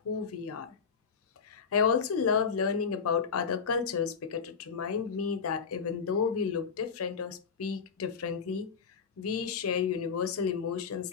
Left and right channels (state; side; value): quieter; right; 6.0 dB